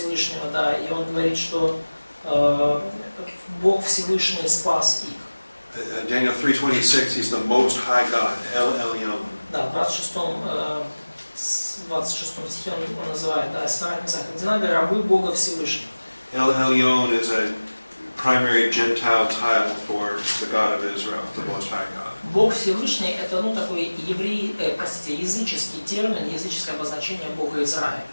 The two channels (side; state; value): both; inverted; correlation -1.00